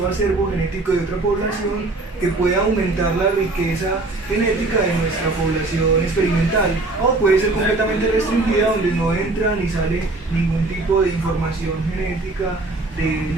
acervo genético de otra población que puede aumentar la riqueza genética de nuestra población experimental, o puede ser completamente restringida donde no entra ni sale ningún tipo de información genética del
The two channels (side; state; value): left; quieter; 3.1 dB